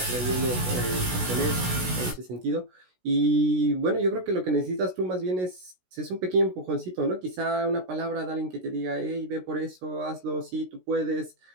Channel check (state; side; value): late; left; 16 ms